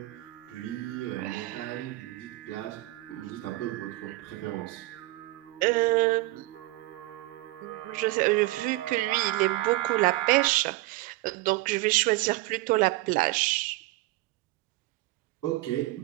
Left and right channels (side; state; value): left; quieter; 19.2 dB